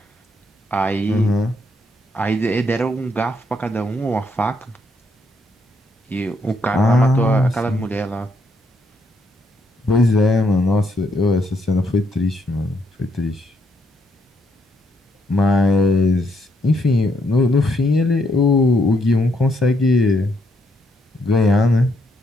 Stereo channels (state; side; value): normal; both; correlation 0.74